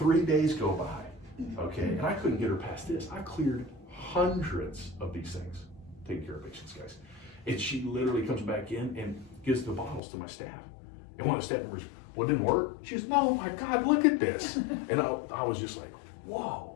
days go by, okay? And I couldn't get her past this. I cleared hundreds of these things, taking care of patients, guys. And she literally comes back in and gives the bottles to my staff. And one of the staff members, well, it didn't work. She goes, no, my God, look at this. And I was just like, whoa.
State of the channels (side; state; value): right; drops out; at 10.0 s